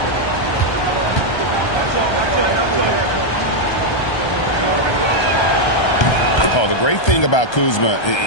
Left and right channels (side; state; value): right; late; 1.3 ms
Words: The great thing about Kuzma